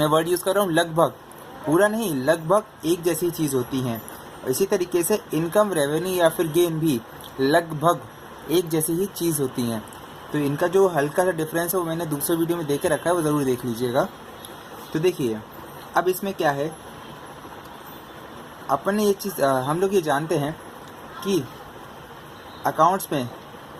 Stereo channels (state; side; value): identical; both; correlation 1.00